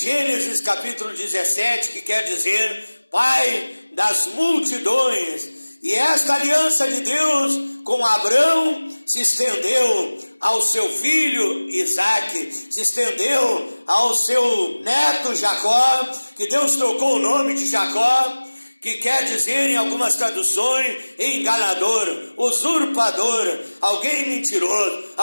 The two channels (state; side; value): inverted; both; correlation -1.00